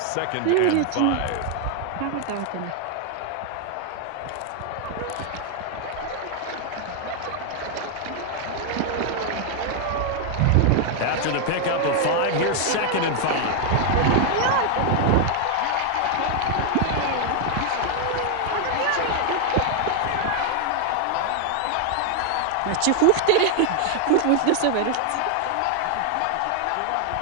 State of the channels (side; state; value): both; different; correlation 0.00